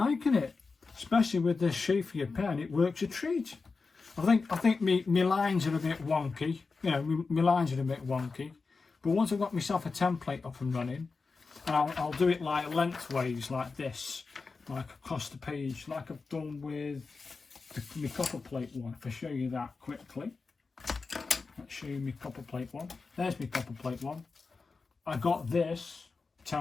it. Especially with this shape for your pen, it works a treat. I think my lines are a bit wonky. You know, my lines are a bit wonky. But once I've got myself a template up and running, and I'll do it like lengthways, like this, like across the page, like I've done with the copperplate one. If I show you that quickly, let's show you my copperplate one. There's my copperplate one. I got this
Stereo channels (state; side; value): quieter; right; 4.4 dB